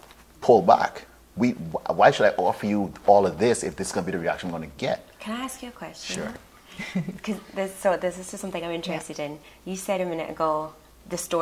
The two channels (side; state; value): both; identical; correlation 1.00